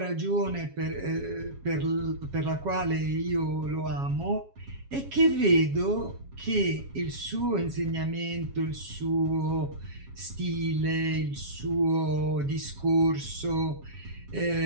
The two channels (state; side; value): late; left; 7.3 ms